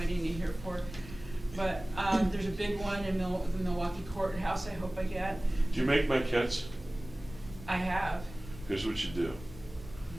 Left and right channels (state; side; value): noise; left; rumble, 15 dB below the sound